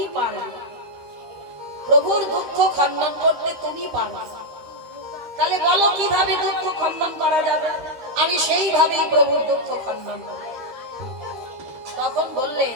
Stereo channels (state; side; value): late; left; 13 ms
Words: পারবে। প্রভুর দুঃখ খণ্ডন করতে তুমি পারবে। তাহলে বলো কিভাবে দুঃখ খণ্ডন করা যাবে? আমি সেইভাবেই প্রভুর দুঃখ খণ্ডন করব। তখন বললে